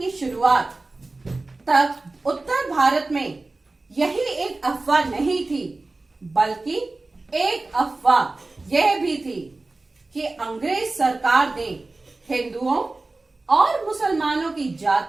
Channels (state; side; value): quieter; left; 3.3 dB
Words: शुरुआत तक उत्तर भारत में यही एक अफवाह नहीं थी, बल्कि एक अफवाह यह भी थी कि अंग्रेज सरकार ने हिंदुओं और मुसलमानों की